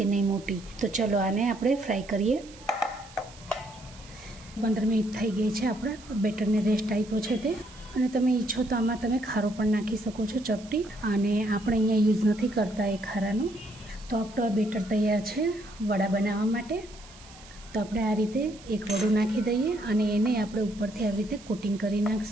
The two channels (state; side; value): noise; right; hiss, 21 dB below the sound